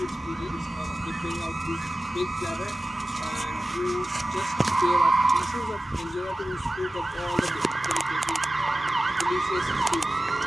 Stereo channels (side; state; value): both; normal; correlation 0.96